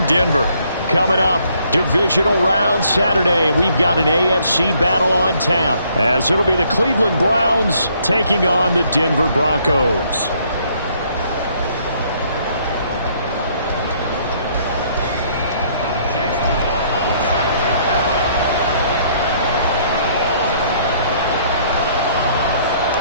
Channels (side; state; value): both; inverted; correlation -0.65